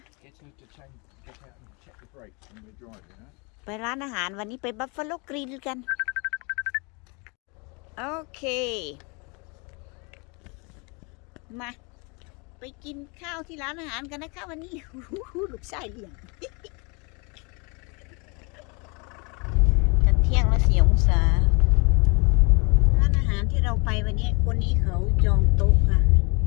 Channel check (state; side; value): quieter; right; 31.0 dB